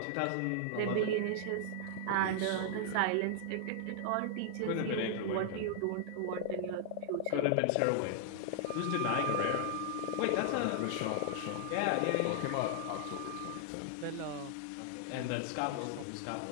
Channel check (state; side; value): different; both; correlation -0.01